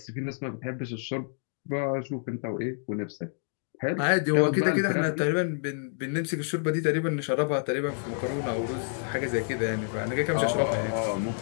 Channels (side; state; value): right; silent; 59 dB below the other